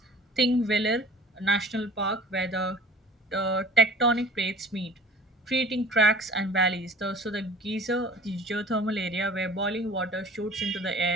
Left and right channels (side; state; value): both; normal; correlation 0.46